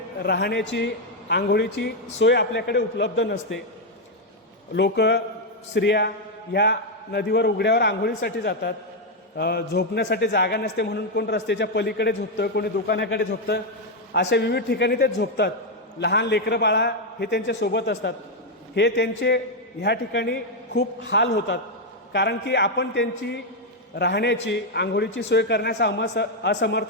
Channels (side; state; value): both; normal; correlation 0.02